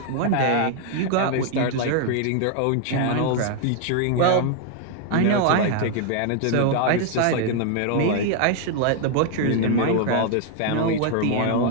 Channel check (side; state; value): both; different; correlation 0.00